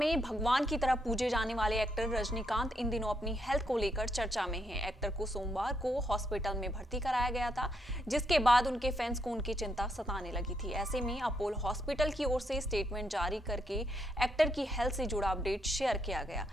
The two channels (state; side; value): normal; both; correlation 0.77